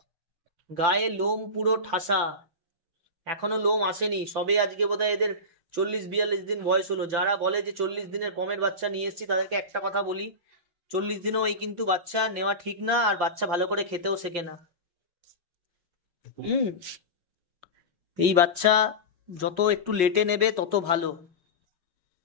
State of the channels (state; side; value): late; left; 5.8 ms